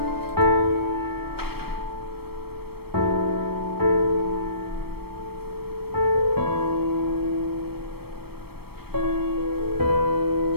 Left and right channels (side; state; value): left; late; 0.96 ms